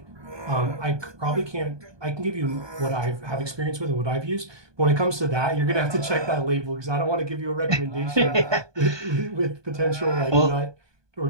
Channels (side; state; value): left; late; 1.2 ms